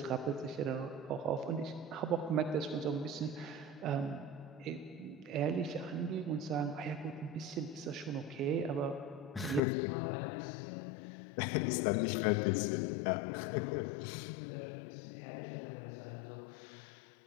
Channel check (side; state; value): right; drops out; at 9.6 s